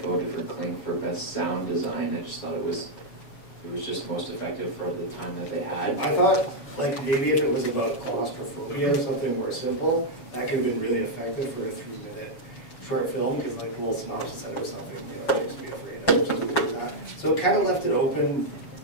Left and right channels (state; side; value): late; right; 6.9 ms